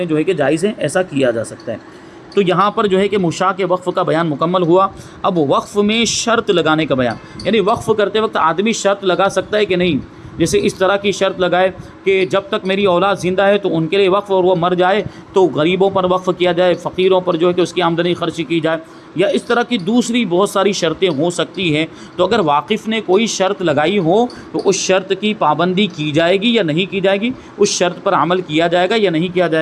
جو ہے کہ جائز ہیں، ایسا کیا جا سکتا ہے۔ تو یہاں پر جو ہے کہ مشاع کے وقف کا بیان مکمل ہوا۔ اب وقف میں شرط لگانے کا بیان، یعنی وقف کرتے وقت آدمی شرط لگا سکتا ہے کہ نہیں، جیسے اس طرح کی شرط لگائے کہ جب تک میری اولاد زندہ ہے تو ان کے لیے وقف، اور وہ مر جائے تو غریبوں پر وقف کیا جائے، فقیروں پر جو ہے کہ اس کی آمدنی خرچ کی جائے، یا اس طرح کی دوسری بہت ساری شرطیں ہو سکتی ہیں۔ تو اگر واقف نے کوئی شرط لگائی ہو تو اس شرط کی پابندی کی جائے گی یا نہیں کی جائے گی، اس شرط پر عمل کیا جائے گا یا نہیں کیا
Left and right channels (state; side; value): identical; both; correlation 1.00